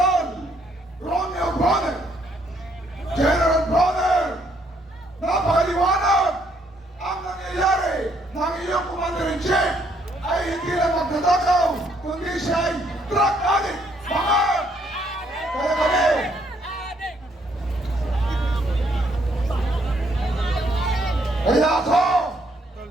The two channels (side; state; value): both; normal; correlation 0.69